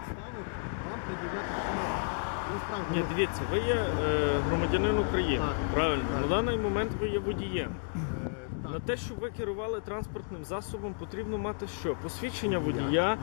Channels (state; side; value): silent; right; digital silence